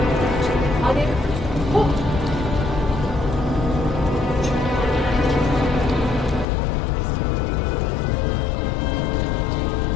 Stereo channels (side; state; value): right; drops out; at 6.5 s